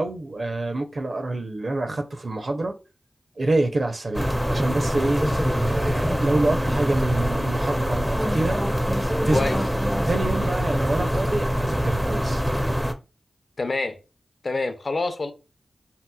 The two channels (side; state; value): both; normal; correlation 0.97